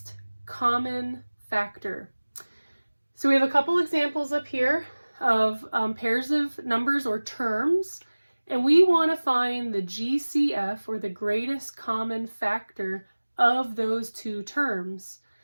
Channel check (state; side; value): inverted; both; correlation -1.00